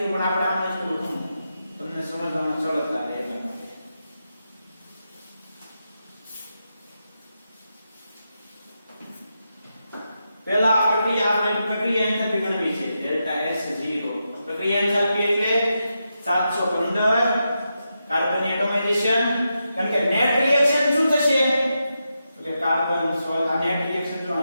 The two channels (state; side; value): inverted; both; correlation -0.87